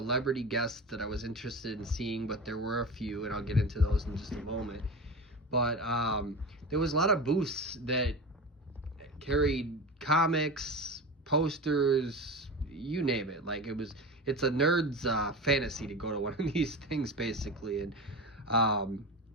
guests that I was interested in seeing, but there were a few, and I'll get into those in just a moment. But there was a lot of booths that carried comics, posters, you name it. Like it's a nerd's fantasy to go to one of these things, basically. And I'm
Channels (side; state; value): both; normal; correlation 0.28